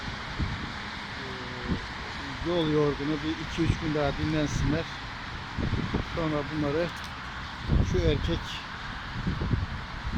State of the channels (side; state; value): both; identical; correlation 1.00